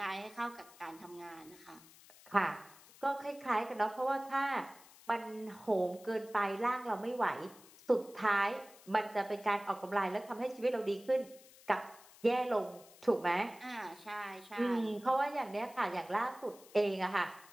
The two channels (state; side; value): noise; left; hiss, 22 dB below the sound